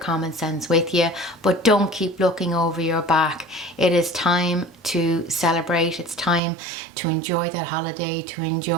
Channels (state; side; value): drops out; left; at 6.4 s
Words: sense with you, but don't keep looking over your back. It is time to celebrate. It's time to enjoy that holiday, to